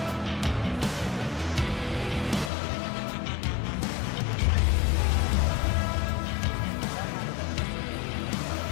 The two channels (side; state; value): right; drops out; at 2.5 s